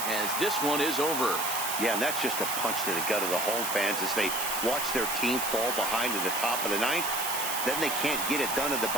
as this one is over. Yeah, and that's just a punch to the gut of the home fans as they watch their team fall behind in the top of the 9th. Then they can't get it done at the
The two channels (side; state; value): right; noise; hiss, 3 dB below the sound